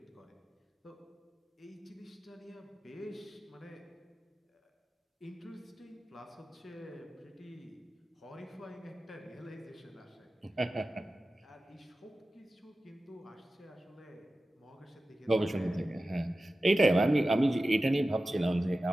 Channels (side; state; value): both; normal; correlation 0.95